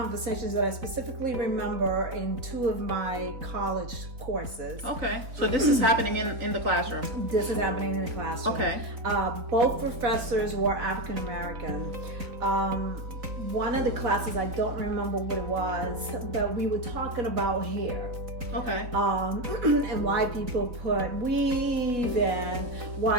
that I specifically remember in two of my college courses. Okay. So this is happening in the classroom? This is happening in the classroom. Okay. Both professors were African American. One of the classes, I don't remember what it was, but we were talking about hair. Okay. And why people put weave and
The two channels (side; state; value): left; late; 3.9 ms